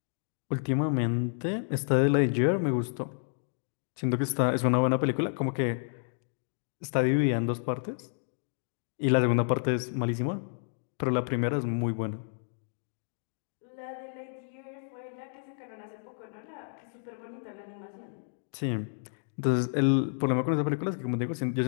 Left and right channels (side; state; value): right; silent; digital silence